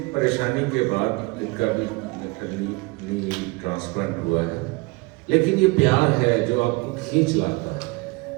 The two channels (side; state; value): left; quieter; 25.5 dB